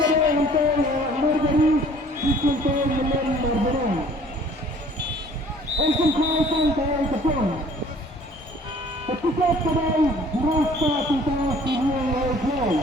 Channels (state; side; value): normal; both; correlation 0.53